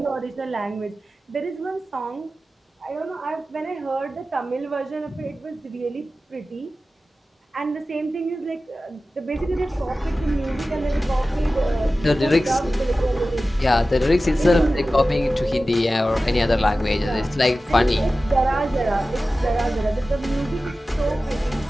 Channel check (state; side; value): normal; both; correlation 0.95